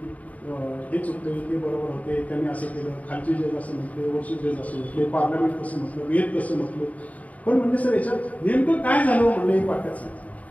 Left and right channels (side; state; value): right; late; 0.071 ms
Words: हे चुकते ते बरोबर होते, त्यांनी असं केलं, खालची जज असं म्हटले, वरची जज असं म्हटले, पार्लमेंट कसं म्हटलं, वेद कसं म्हटलं. पण म्हणजे सर याच्यात नेमकं काय झालं म्हणलं एक वाक्यात सांगितलं.